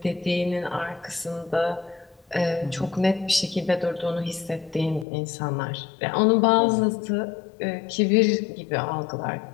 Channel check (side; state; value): right; drops out; at 5.1 s